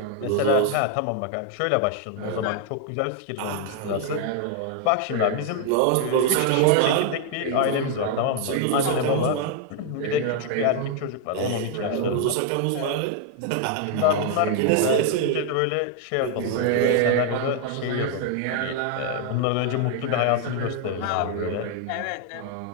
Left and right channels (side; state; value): both; different; correlation 0.00